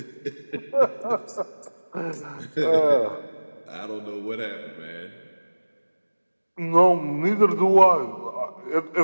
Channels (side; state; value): both; inverted; correlation -1.00